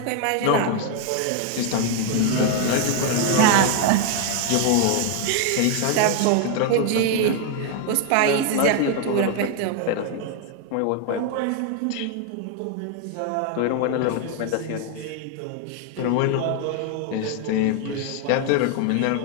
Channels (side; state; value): both; different; correlation 0.01